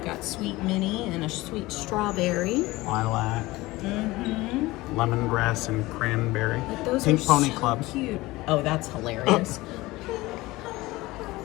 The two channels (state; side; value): quieter; right; 19.8 dB